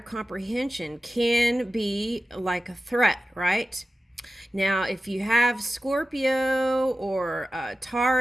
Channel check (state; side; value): normal; both; correlation 0.93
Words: can be like a threat, right? Now, if you have Scorpio or